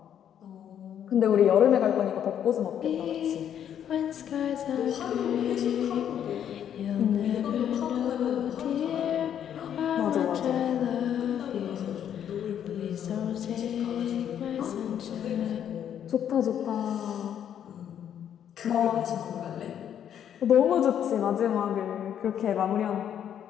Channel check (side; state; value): right; quieter; 9.5 dB